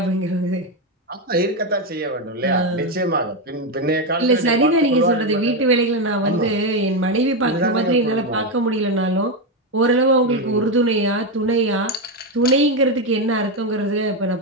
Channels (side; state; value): both; normal; correlation 0.08